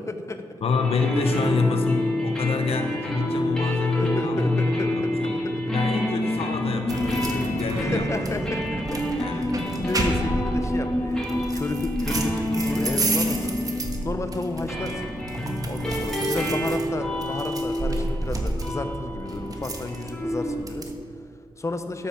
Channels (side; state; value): both; normal; correlation 0.79